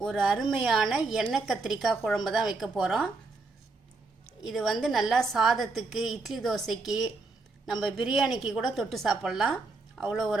ஒரு அருமையான எண்ணெய் கத்திரிக்காய் குழம்பு தான் வைக்க போகிறோம். இது நல்லா சாதத்துக்கு, இட்லி தோசைக்கு, நம்ம பிரியாணிக்கு கூட தொட்டு சாப்பிட்லாம். அவ்வளோ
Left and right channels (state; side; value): quieter; left; 3.7 dB